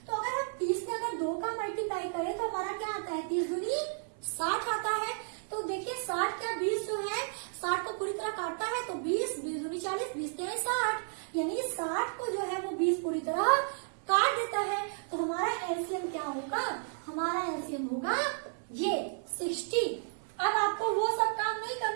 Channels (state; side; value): silent; left; 56 dB below the other